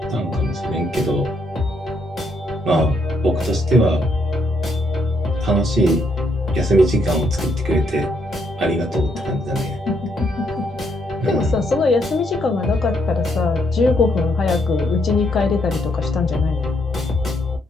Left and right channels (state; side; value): normal; both; correlation 0.74